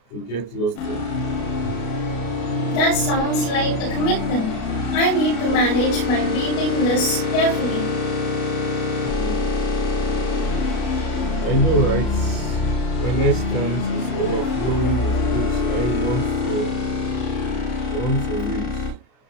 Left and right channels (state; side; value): late; right; 33 ms